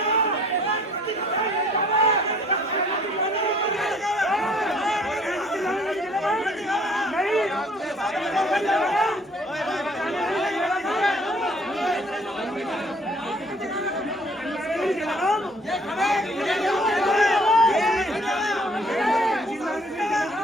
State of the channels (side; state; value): both; normal; correlation 0.57